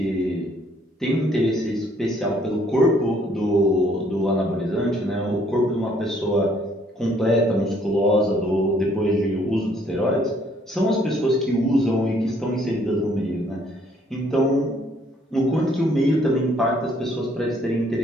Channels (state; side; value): normal; both; correlation 0.64